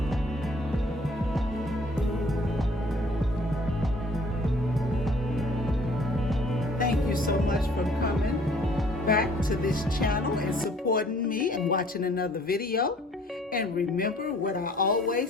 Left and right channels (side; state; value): both; normal; correlation 0.57